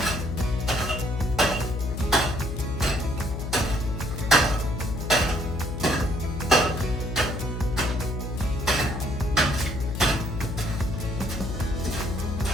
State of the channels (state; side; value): noise; left; hum, 5 dB below the sound